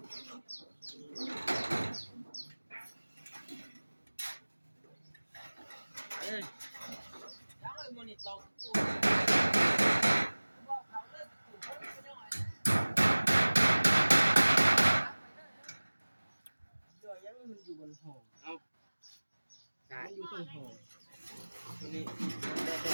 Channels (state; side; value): inverted; both; correlation -1.00